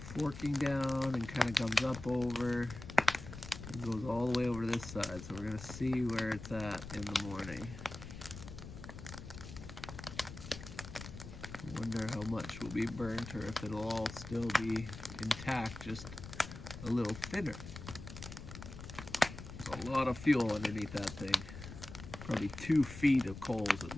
down and kind of comes up over and goes all the way over to this side. So we're going to see where it's at in the morning. I wonder how much will be burnt or if it'll all still be intact, just a little thinner. There's a lot of fuel underneath that thing. Probably 2 feet of coals at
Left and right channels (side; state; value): left; noise; rumble, 12 dB below the sound